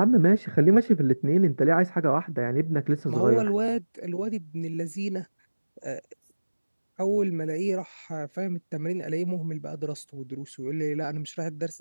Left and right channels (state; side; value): inverted; both; correlation -1.00